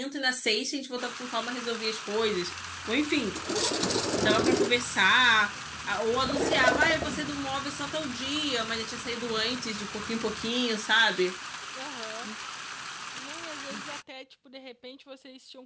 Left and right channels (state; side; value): identical; both; correlation 1.00